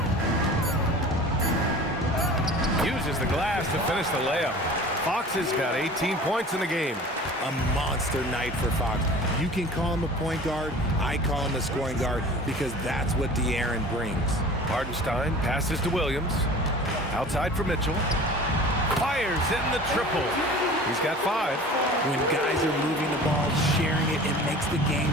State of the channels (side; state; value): both; normal; correlation 0.41